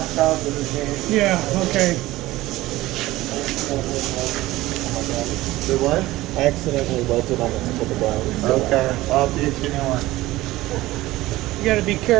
out the machine. Yeah, okay. The what? I accidentally welted on the tip of the brown. Okay. I'll teach you one. You got to be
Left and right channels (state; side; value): quieter; left; 17.6 dB